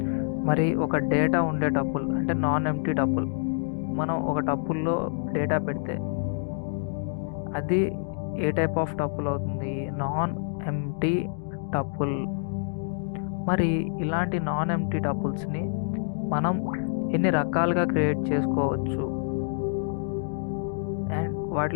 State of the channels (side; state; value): right; silent; digital silence